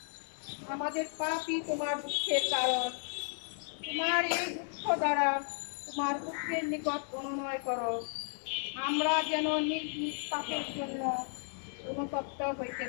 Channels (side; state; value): right; silent; digital silence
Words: আমাদের পাপই তোমার দুঃখের কারণ। তোমার এই দুঃখ দ্বারা তোমার পুত্রের নিকট অনুনয় করো, আমরা যেন নিজ নিজ পাপের জন্য অনুতপ্ত হইতে